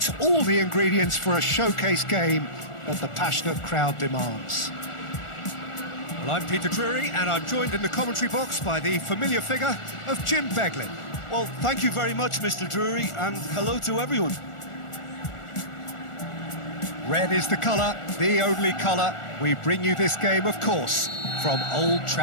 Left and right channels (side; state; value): right; late; 1.4 ms